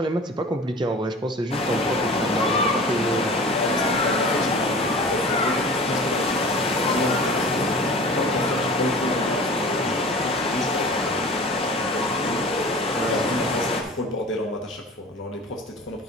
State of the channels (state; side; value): normal; both; correlation 0.39